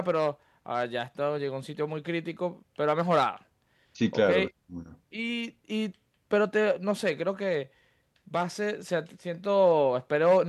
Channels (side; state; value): both; identical; correlation 1.00